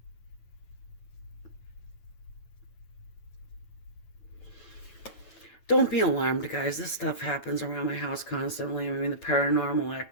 Don't be alarmed, guys. This stuff happens around my house constantly. I mean, the paranormal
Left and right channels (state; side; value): late; right; 9.1 ms